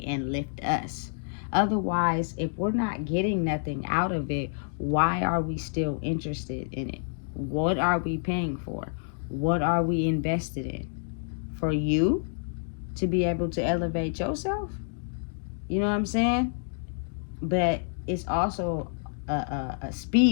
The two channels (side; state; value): right; silent; digital silence